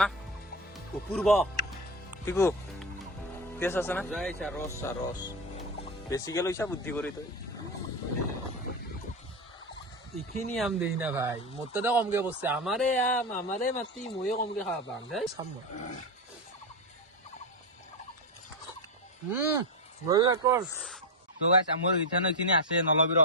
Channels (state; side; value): normal; both; correlation 0.14